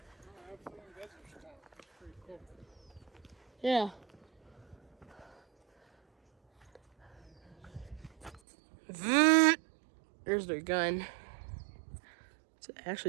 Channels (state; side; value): drops out; left; at 8.4 s